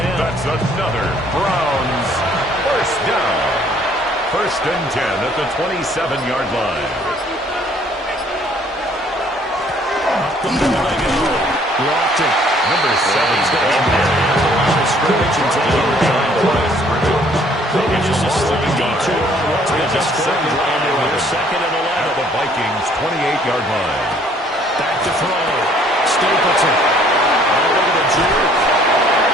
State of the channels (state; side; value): normal; both; correlation 0.60